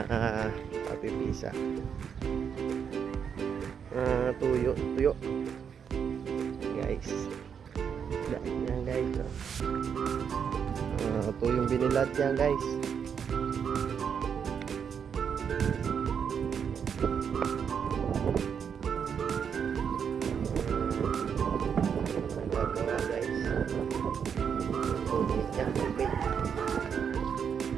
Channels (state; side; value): quieter; left; 7.3 dB